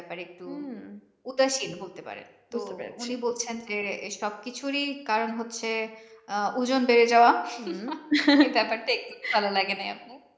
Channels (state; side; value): identical; both; correlation 1.00